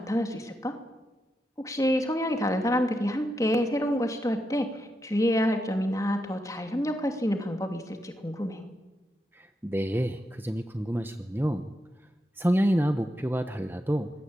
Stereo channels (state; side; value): normal; both; correlation 0.85